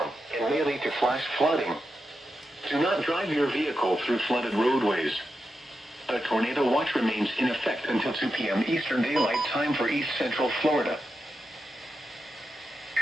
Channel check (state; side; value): normal; both; correlation 0.88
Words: and may lead to flash flooding. Do not drive your vehicle through flooded roadways. A tornado watch remains in effect until 2 p.m. Eastern Daylight Time for East Central Florida.